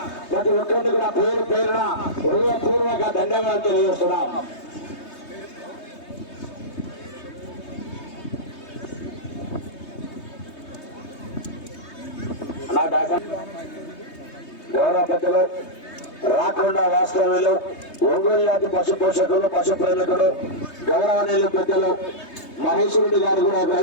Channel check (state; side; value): late; right; 3.2 ms